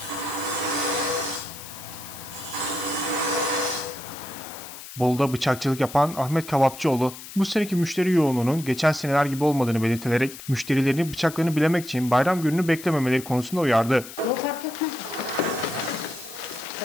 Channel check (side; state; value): left; noise; hiss, 14 dB below the sound